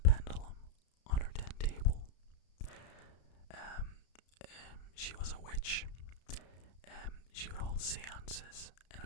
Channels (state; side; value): late; right; 33 ms